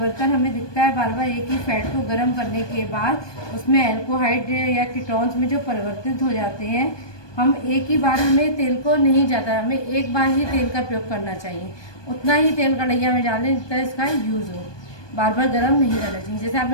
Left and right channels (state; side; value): late; right; 1.2 ms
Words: हमें दिखता है बार बार एक ही फैट को गर्म करने के बाद, उसमें अल्कोहाइड या कीटोन्स में जो परिवर्तित हो जाते हैं, हम एक ही बार, हमें तेल को नहीं जाता, हमें एक बार ही तेल का प्रयोग करना चाहिए, उतना ही तेल कढ़ैया में डालें जितना इसका यूज़ हो, बार बार गर्म नहीं करना चाहिए। जैसे